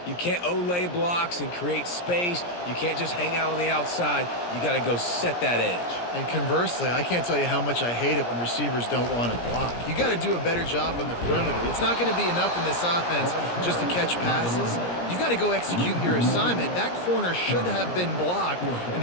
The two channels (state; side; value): late; right; 17 ms